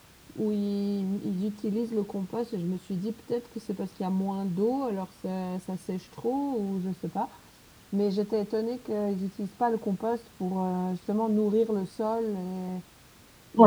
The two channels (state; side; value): identical; both; correlation 1.00